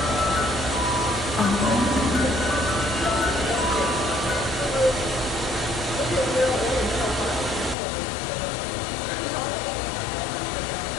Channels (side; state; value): right; drops out; at 7.8 s